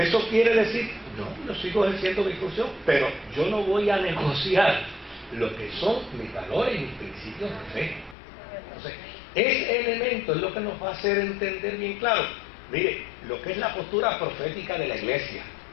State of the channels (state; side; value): drops out; right; at 8.2 s